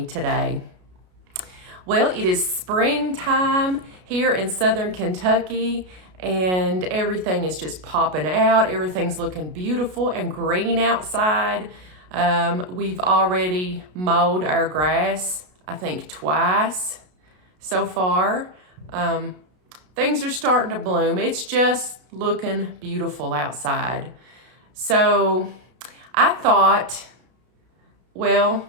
today. Well, it is springtime here in southern Kentucky, and everything is just popping out. Everything's looking beautiful and green outside. We've already mowed our grass, I think, twice so far. Things are starting to bloom. It's just looking beautiful outside. So I thought, well,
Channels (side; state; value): left; late; 33 ms